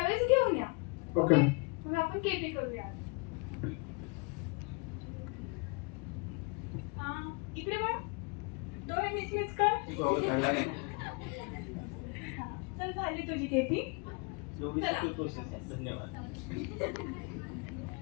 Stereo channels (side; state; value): right; quieter; 32.2 dB